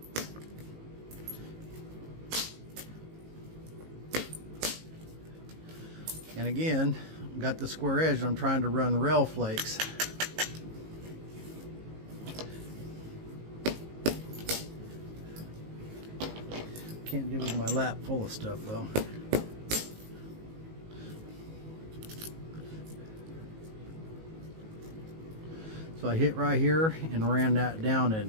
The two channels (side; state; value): left; late; 18 ms